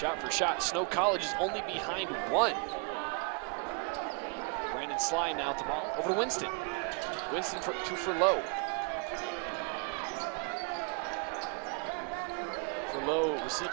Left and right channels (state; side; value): quieter; left; 38.2 dB